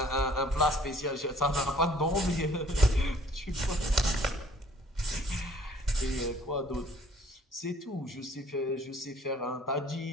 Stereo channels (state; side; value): normal; both; correlation 0.56